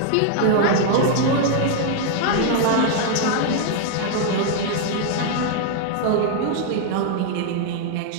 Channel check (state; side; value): different; both; correlation 0.00